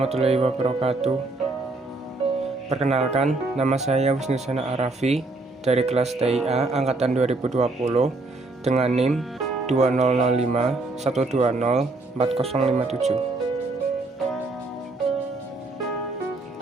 wabarakatuh. Perkenalkan, nama saya Wisnusana Arafi dari kelas TIA angkatan 2020 dengan NIM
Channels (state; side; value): quieter; left; 3.2 dB